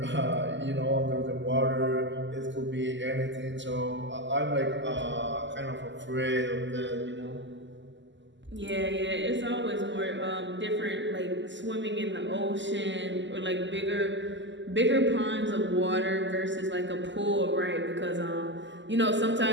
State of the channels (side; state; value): left; late; 0.54 ms